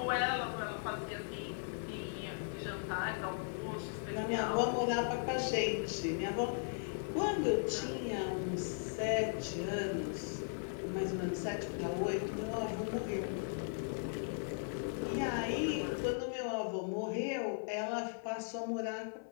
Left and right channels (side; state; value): right; silent; 53 dB below the other